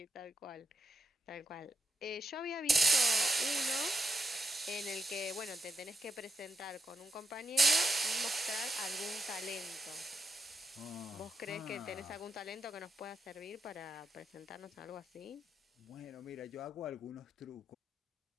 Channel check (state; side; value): normal; both; correlation 0.83